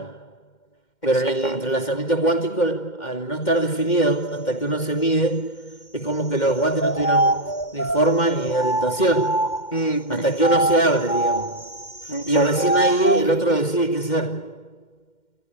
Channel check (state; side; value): late; right; 2.1 ms